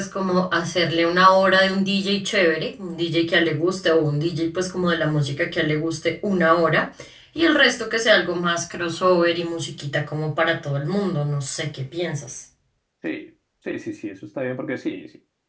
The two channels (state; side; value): identical; both; correlation 1.00